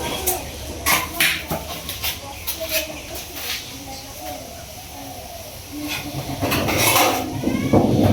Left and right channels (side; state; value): both; identical; correlation 1.00